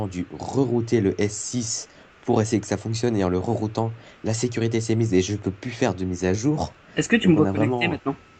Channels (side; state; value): both; identical; correlation 1.00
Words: dû rerouter le S6 pour essayer que ça fonctionne. Et en le reroutant, la sécurité s'est mise et je ne peux plus faire de mise à jour. Est-ce que tu me Donc vois connecté maintenant?